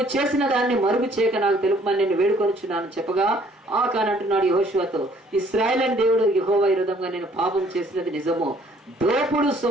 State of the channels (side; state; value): both; normal; correlation 0.60